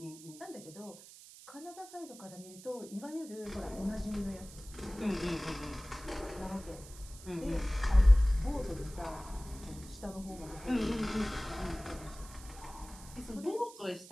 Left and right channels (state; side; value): noise; right; hiss, 18 dB below the sound